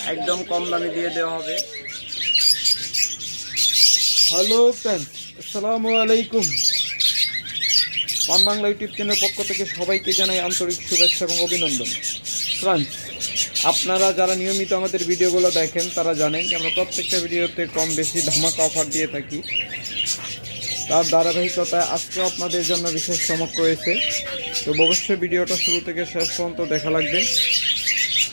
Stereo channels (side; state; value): both; inverted; correlation -1.00